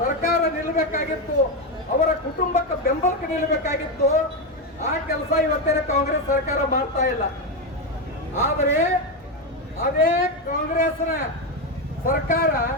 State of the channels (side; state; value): both; normal; correlation 0.09